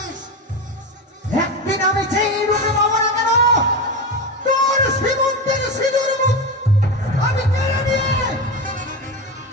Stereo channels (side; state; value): both; normal; correlation 0.19